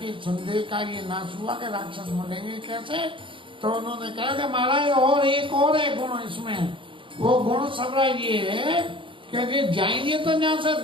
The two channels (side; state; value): left; late; 0.25 ms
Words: संदेह का ये नाश हुआ कि राक्षस मरेंगे कैसे। तो उन्होंने कहा कि महाराज और एक और है गुण इसमें, वो गुण सबरा ये है कि जाएंगे तो यहाँ से